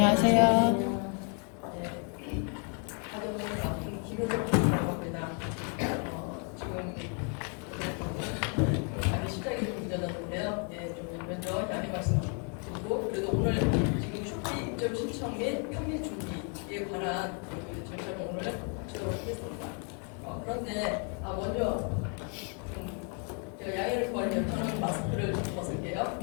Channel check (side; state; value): right; quieter; 39.5 dB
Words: 지금 시작이 좀 늦어졌는데요. 좀 먼저 양해 말씀드리고, 그래도 오늘 지금 쇼피 입점 신청 및 편입 준비에 관한 절차를 오늘 하도록 하겠습니다. 그런데 먼저 제가 양해를 구하려면 저는 마스크를 벗을게요.